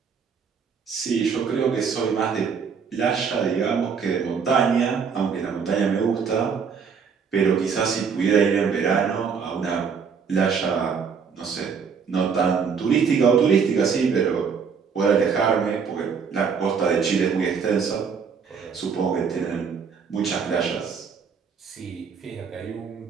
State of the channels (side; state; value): left; quieter; 6.2 dB